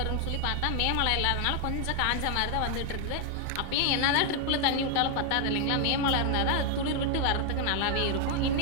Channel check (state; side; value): different; both; correlation 0.00